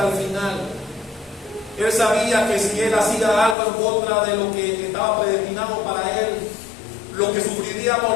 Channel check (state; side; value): drops out; right; at 3.6 s